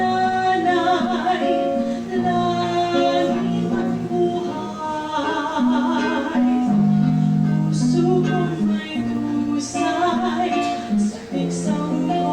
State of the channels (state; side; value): identical; both; correlation 1.00